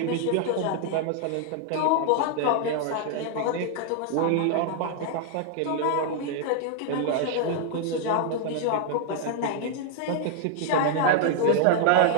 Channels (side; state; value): both; different; correlation 0.00